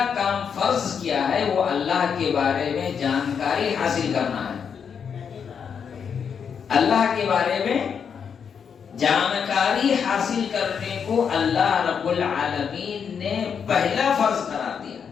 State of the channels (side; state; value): right; quieter; 6.9 dB